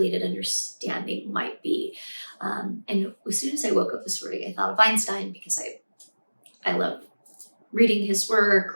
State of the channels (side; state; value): both; inverted; correlation -1.00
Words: understanding might be. And as soon as I woke up this morning, I thought of Einstein because I love reading his work